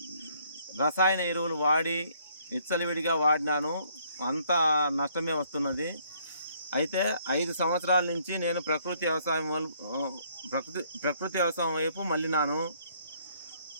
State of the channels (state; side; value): inverted; both; correlation -0.65